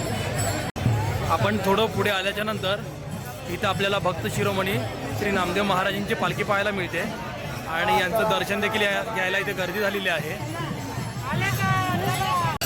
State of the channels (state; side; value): identical; both; correlation 1.00